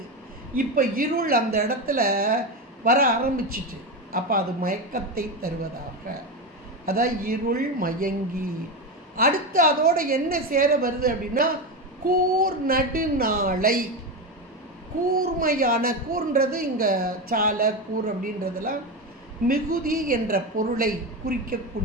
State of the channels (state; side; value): normal; both; correlation 0.16